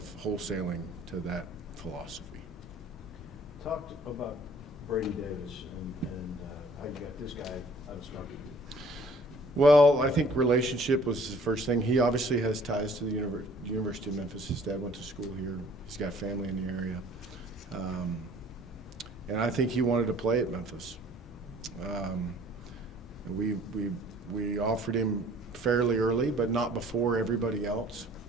wholesaling to that philosophy. Talked about Brady Davis and how you got this guy out of Starkey. Well, I think relationship was the first thing. He obviously has ties to the University of Memphis. His dad went to school here. He's got family in the area. And I think he wanted to play at Memphis. We offered him fairly early, but not before everybody else.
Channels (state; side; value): normal; both; correlation 0.54